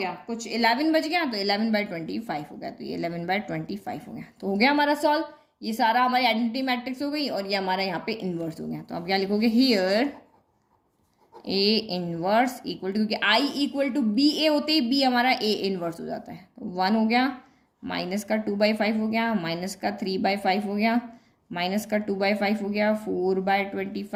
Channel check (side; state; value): both; identical; correlation 1.00